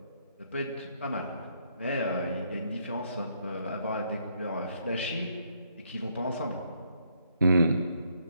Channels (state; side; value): inverted; both; correlation -0.71